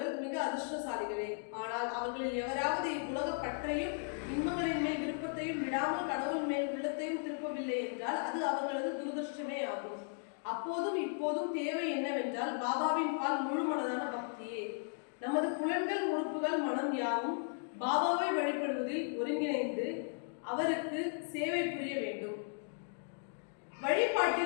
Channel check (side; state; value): right; silent; 54 dB below the other